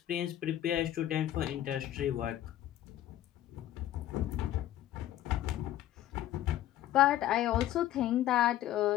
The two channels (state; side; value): quieter; right; 13.0 dB